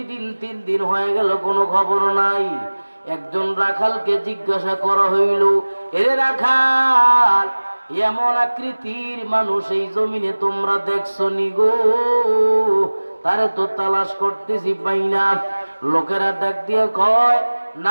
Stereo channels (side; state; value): both; inverted; correlation -1.00